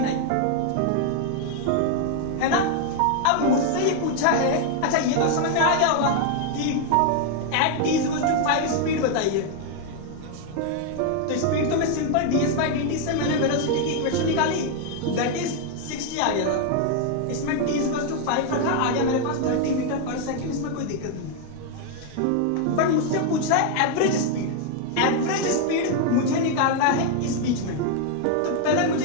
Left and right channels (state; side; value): different; both; correlation 0.00